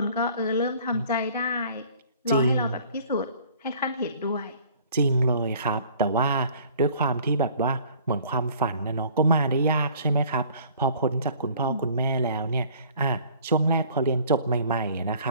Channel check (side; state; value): both; inverted; correlation -0.52